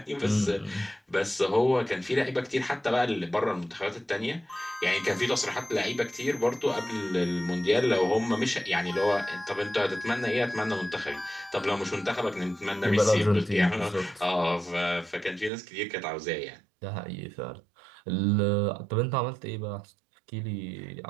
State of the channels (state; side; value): drops out; left; at 15.5 s